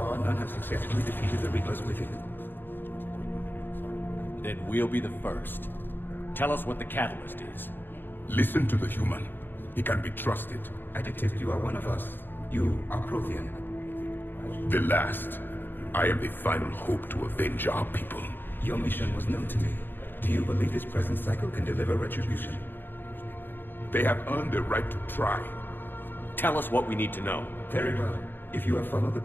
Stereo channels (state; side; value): late; right; 0.095 ms